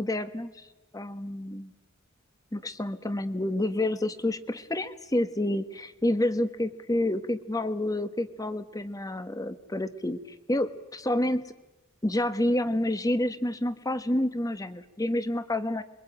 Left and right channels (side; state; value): both; normal; correlation 0.82